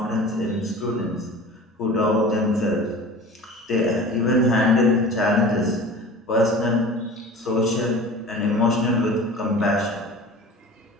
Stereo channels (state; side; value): normal; both; correlation 0.39